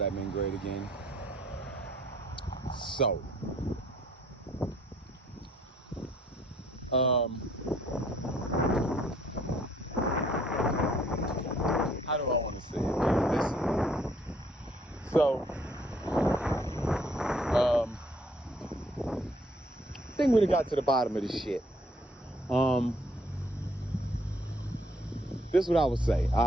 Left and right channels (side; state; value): both; normal; correlation 0.64